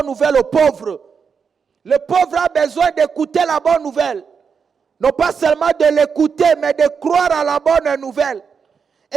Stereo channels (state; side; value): quieter; left; 6.1 dB